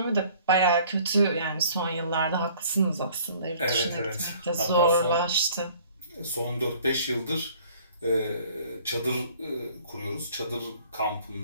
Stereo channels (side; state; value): both; inverted; correlation -0.55